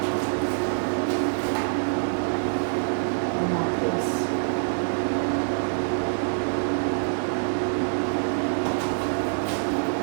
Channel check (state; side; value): silent; left; digital silence